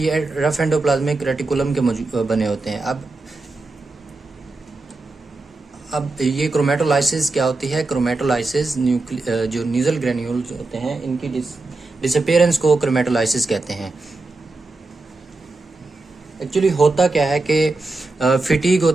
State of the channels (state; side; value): quieter; left; 3.3 dB